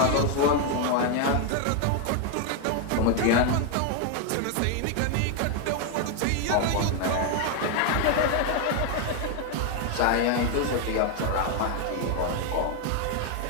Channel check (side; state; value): both; different; correlation 0.01